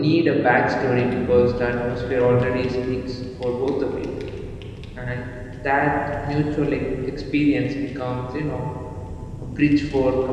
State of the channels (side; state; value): both; identical; correlation 1.00